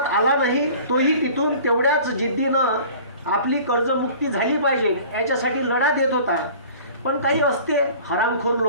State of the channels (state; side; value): inverted; both; correlation -0.45